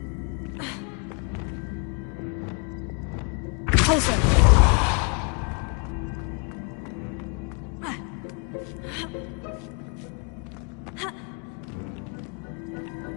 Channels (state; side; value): quieter; right; 36.2 dB